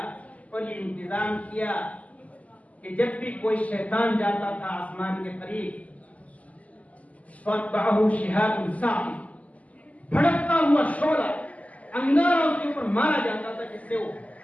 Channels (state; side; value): late; right; 0.072 ms